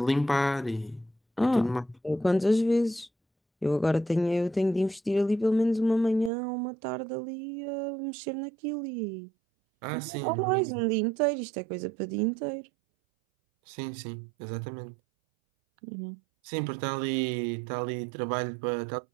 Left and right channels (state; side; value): drops out; left; at 6.3 s